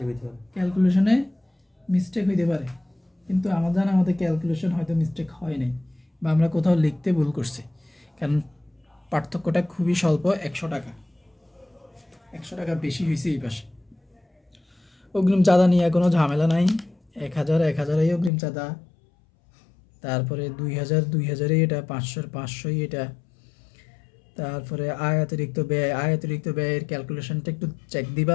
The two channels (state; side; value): drops out; right; at 18.3 s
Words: হইতে পারে, ক্যালকুলেশনে মিস্টেক হইতে পারে। কিন্তু আমাদের ক্যালকুলেশন হয়তো মিস্টেক হয় নাই, বা আমরা কোথাও লিখতে ভুল করছি, কারণ পার্থক্যটা খুবই স্বল্প। 100 টাকা, 100 টাকা বেশি হয়েছে এই পাশে। অগ্রিম চাঁদা নিয়ে কোনো ঝামেলা নাই। 1,000 অগ্রিম চাঁদা, তারপরে 2,000 এটা, 500 এটা। তারপরে আয়াতিরিক্ত ব্যয়ের ক্যালকুলেশনটা একটু চেক